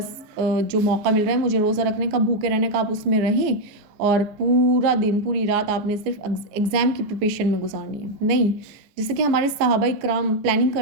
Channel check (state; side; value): late; left; 14 ms